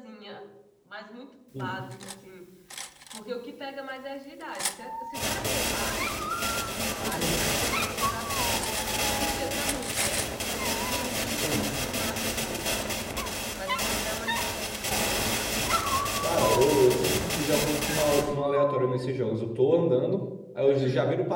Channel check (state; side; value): identical; both; correlation 1.00